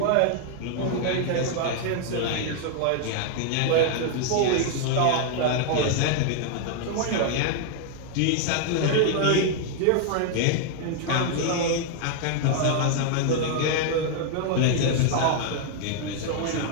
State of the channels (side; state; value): both; different; correlation 0.00